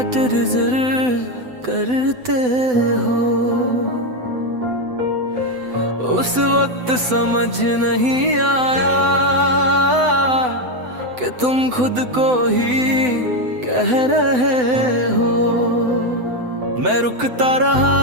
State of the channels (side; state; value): left; late; 7.9 ms